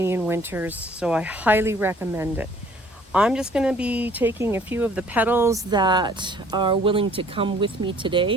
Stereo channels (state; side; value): normal; both; correlation 0.56